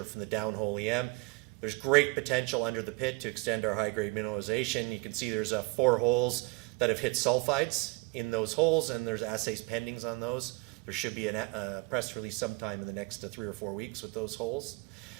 from the downhole EM. There's great potential under the pit to extend our high-grade mineralization. You can see there's 4 holes that have hit sulfides in those holes, and there's assays pending on those. There should be a press release sometime in the next 3 or 4 weeks with those holes.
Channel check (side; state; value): left; quieter; 27.0 dB